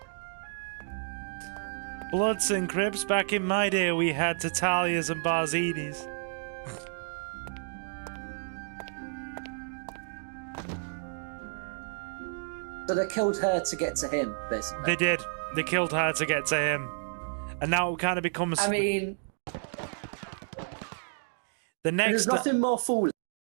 Bloods and Crips, back in my day we had Tatalias and Barzinis. So they killed her to get to him, basically. They did. They killed her to get to him. And now it kind of becomes... I mean... The next... There's nothing more foolish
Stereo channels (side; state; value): left; silent; digital silence